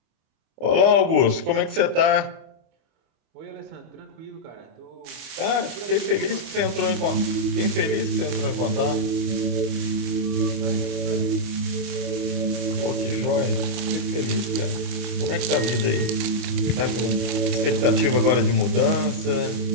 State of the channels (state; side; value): late; left; 25 ms